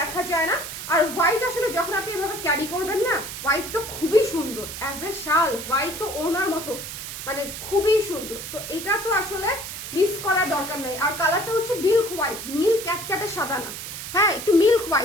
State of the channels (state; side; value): noise; right; hiss, 8 dB below the sound